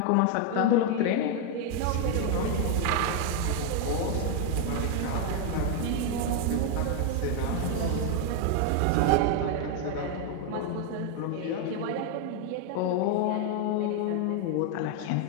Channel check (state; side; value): different; both; correlation 0.01